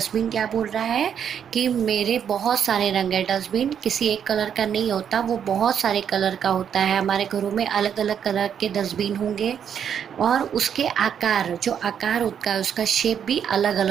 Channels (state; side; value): quieter; left; 8.3 dB